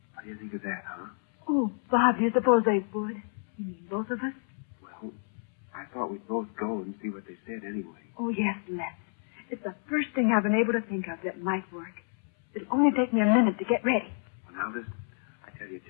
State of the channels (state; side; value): silent; right; 58 dB below the other